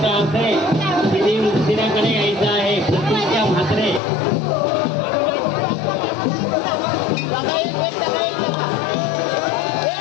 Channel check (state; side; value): drops out; right; at 4.0 s